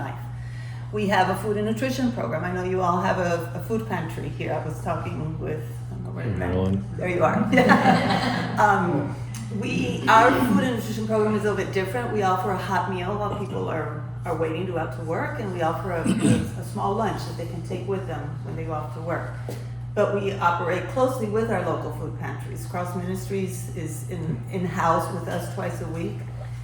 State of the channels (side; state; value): both; identical; correlation 1.00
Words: We have a food and nutrition program. I know you all have a food pantry here. I was talking with, I don't know where there you are. Our food and nutrition program is a little bit different. We offer a hot meal while people are waiting to go out to work, and we offer a small lunch that they can take with them when they go off to work. But we operate closely with our local food pantries. Cross Ministries is in-house with us twice a week,